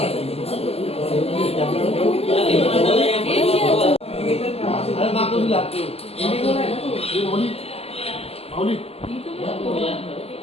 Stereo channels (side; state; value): right; late; 0.29 ms